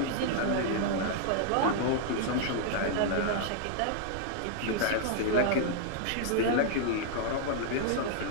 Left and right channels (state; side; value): different; both; correlation 0.00